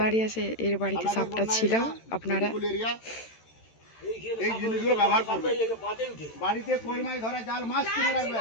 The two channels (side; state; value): right; late; 13 ms